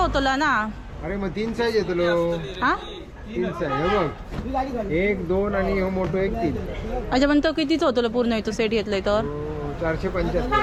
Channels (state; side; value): identical; both; correlation 1.00